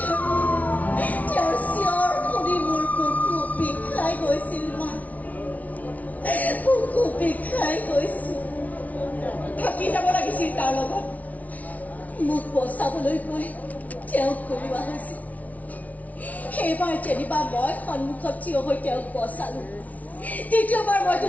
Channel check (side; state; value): right; late; 0.071 ms